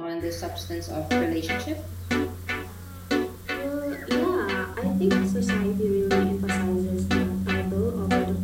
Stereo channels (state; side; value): identical; both; correlation 1.00